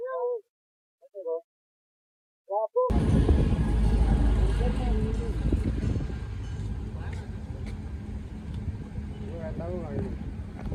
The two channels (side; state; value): both; identical; correlation 1.00